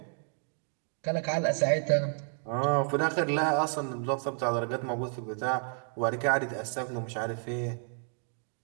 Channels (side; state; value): left; silent; 57 dB below the other